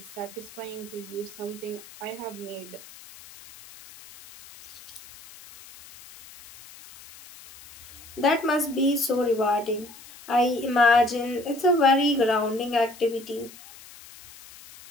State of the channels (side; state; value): left; noise; hiss, 19 dB below the sound